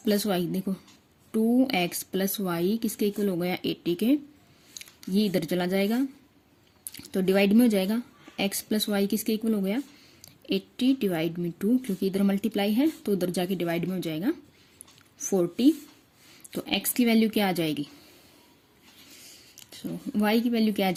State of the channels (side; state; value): both; identical; correlation 1.00